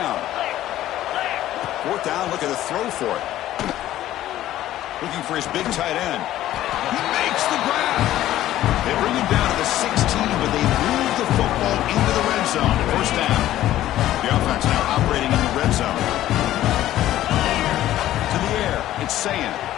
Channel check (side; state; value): right; quieter; 13.7 dB